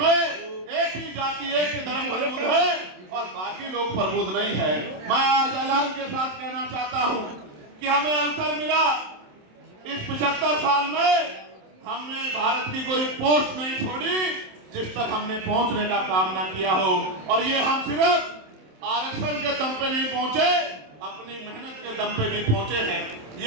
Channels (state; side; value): late; left; 27 ms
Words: एक ही जाति एक ही धर्म प्रबुद्ध है और बाकी लोग प्रबुद्ध नहीं है। मैं आज ऐलान के साथ कहना चाहता हूं कि हमें अवसर मिला इस 75 साल में, हमने भारत की कोई पोस्ट नहीं छोड़ी जिस तक हमने पहुंचने का काम ना किया हो। और ये हम सिर्फ आरक्षण के दम पे नहीं पहुंचे, अपनी मेहनत के दम पे भी पहुंचे हैं।